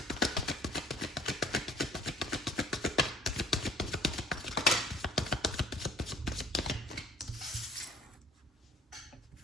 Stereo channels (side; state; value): both; normal; correlation 0.54